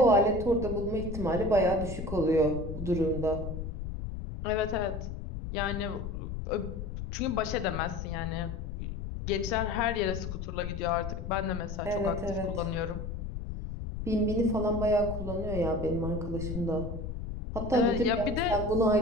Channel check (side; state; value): left; noise; rumble, 6 dB below the sound